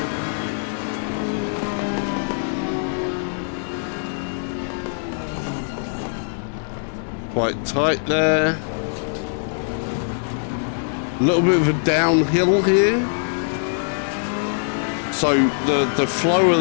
Quite tight there. A little bit of a downhill here. So the flow of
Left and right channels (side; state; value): right; silent; digital silence